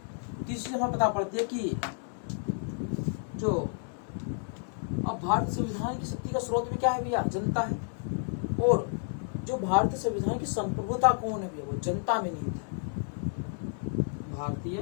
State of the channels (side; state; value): right; silent; digital silence